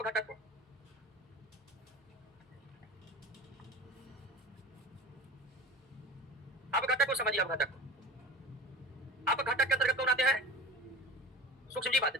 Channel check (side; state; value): both; normal; correlation 0.34